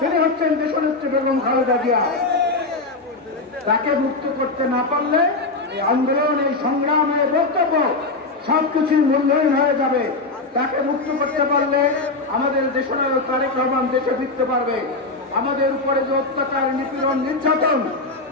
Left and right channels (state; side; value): quieter; right; 3.3 dB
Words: হচ্ছেন দেশনেত্রী বেগম খালেদা জিয়া। তাকে মুক্ত করতে না পারলে এই আন্দোলন, এই সংগ্রাম, এই বক্তব্য সবকিছুই মূল্যহীন হয়ে যাবে। তাকে মুক্ত করতে পারলে আমাদের দেশনায়ক তারেক রহমান দেশে ফিরতে পারবে। আমাদের উপরে যে অত্যাচার, নিপীড়ন, নির্যাতন,